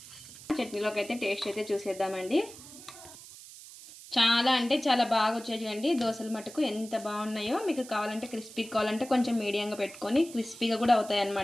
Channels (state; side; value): noise; right; hiss, 17 dB below the sound